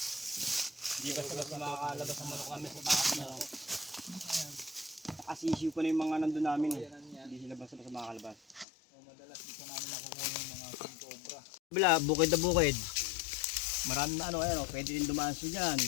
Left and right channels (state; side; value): drops out; right; at 8.7 s